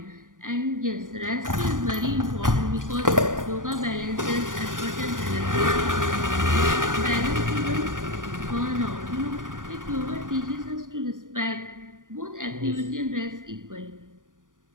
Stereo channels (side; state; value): left; late; 0.88 ms